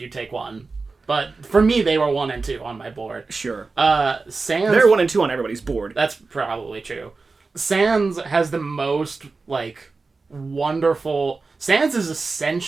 take one. But for me, they were 1 and 2 on my board. Sure. Sans... They're 1 and 2 on everybody's board. That's probably true. Sans has the most, like, wonderful... Sans is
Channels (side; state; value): left; quieter; 4.0 dB